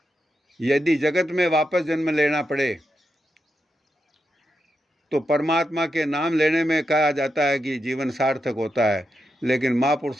यदि जगत में वापस जन्म लेना पड़े तो परमात्मा के नाम लेने में कहा जाता है कि जीवन सार्थक होता है, लेकिन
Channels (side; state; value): both; normal; correlation 0.86